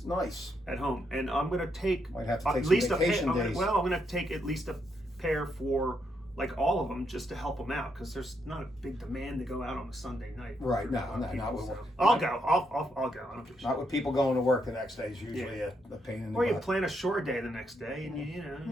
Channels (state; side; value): normal; both; correlation 0.78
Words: Nice. At home. And I'm going to take might have to take at least some vacation days. I'm going to take at least a pair for like all of them just to help them out because there's not a big demand to go out on a Sunday night. Right. Not with so. I'll go. I'll go. I don't give a shit. Not with people going to work the next day is usually a pain in the butt. Or you plan a short day the next day and